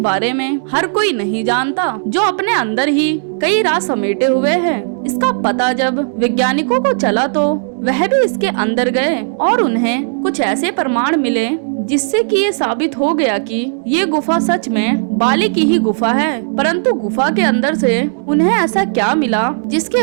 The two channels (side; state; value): left; silent; digital silence